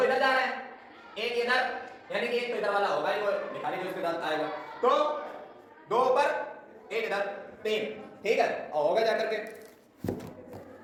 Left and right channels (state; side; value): identical; both; correlation 1.00